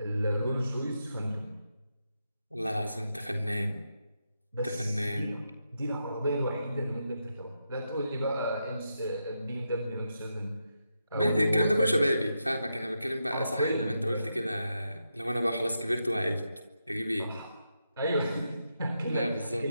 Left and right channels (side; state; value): both; inverted; correlation -0.85